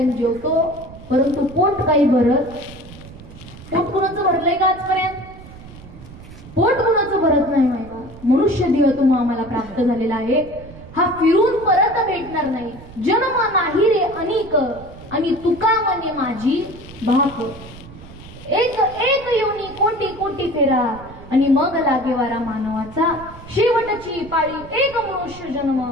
जेवतो, परंतु पोट काही भरत. पोट कुणाचं भरलंय का आजपर्यंत? पोट कुणाचं भरत नाही माहिती. मनुष्य देह तुम्हा आम्हाला प्राप्त झालेला आहे, हा फिरून परत भेटणार नाही. जन्म नाही रे अनेक आणि तुका मने माझी भाक. एक एक योनी कोटी कोटी फेरा आणि मग लागे वारा मानवाचा. शेवटची पाळी एक मनुष्य जन्म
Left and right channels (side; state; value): right; noise; rumble, 17 dB below the sound